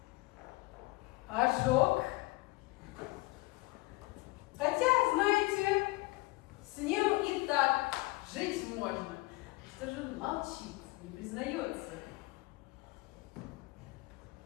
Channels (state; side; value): quieter; right; 22.3 dB